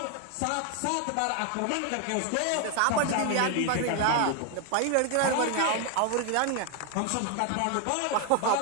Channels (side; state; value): both; different; correlation 0.01